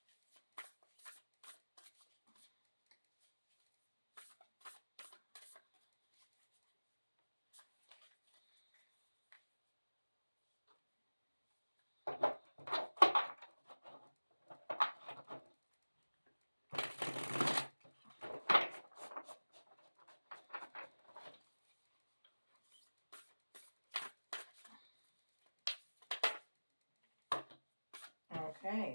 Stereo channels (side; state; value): both; inverted; correlation -1.00